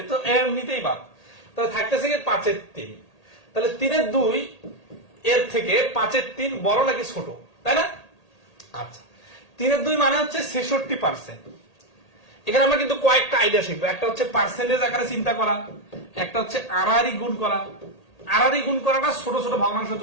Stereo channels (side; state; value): right; late; 1.8 ms